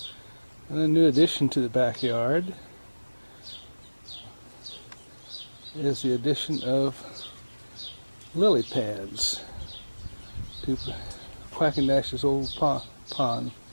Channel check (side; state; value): both; inverted; correlation -1.00